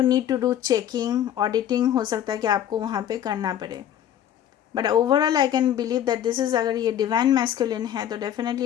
need to do checking, auditing हो सकता है कि आपको वहाँ पे करना पड़े। But overall I can believe that this is, अगर ये डिवाइन मैस्कुलिन है तो definitely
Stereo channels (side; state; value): right; quieter; 10.7 dB